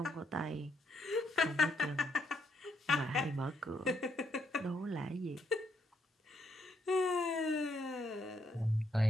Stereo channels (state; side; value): normal; both; correlation 0.76